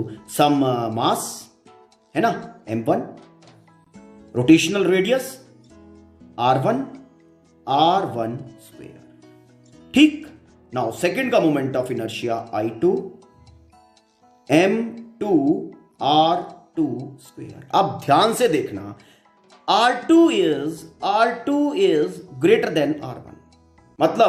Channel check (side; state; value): both; identical; correlation 1.00